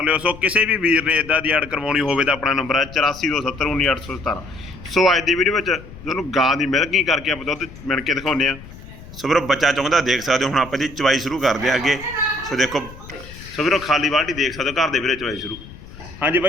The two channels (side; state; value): left; noise; rumble, 17 dB below the sound